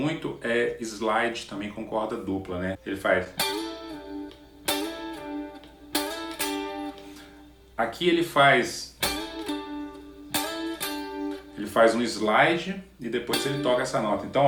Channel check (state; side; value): identical; both; correlation 1.00